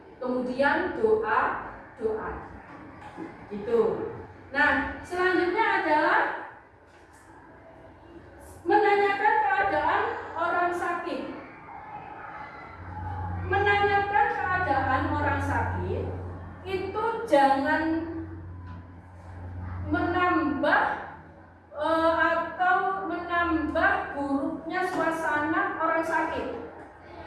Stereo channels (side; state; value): both; identical; correlation 1.00